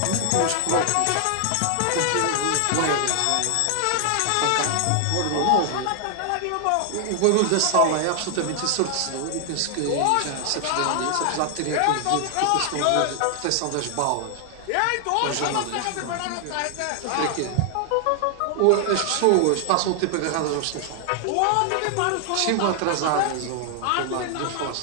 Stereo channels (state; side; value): different; both; correlation 0.00